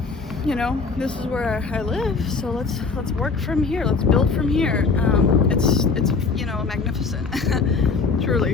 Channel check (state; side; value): quieter; right; 4.6 dB